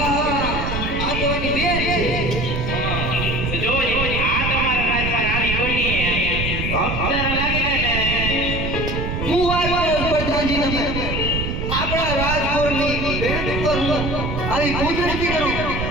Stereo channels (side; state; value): right; noise; rumble, 3 dB below the sound